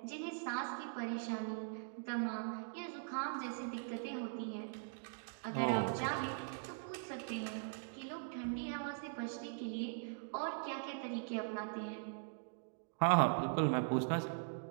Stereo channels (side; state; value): left; silent; digital silence